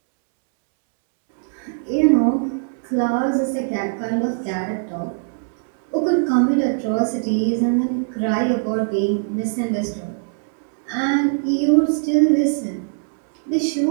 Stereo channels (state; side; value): silent; left; 65 dB below the other